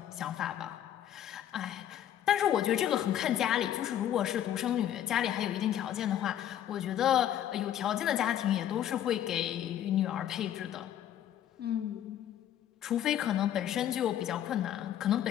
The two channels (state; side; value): quieter; right; 10.9 dB